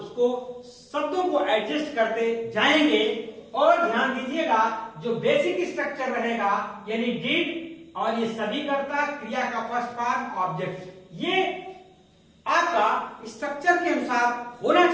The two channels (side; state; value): both; identical; correlation 1.00